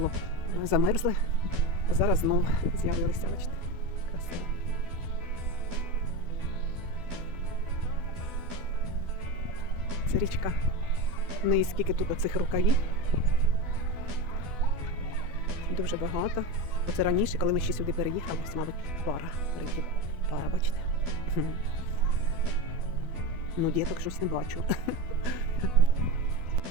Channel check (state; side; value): late; left; 12 ms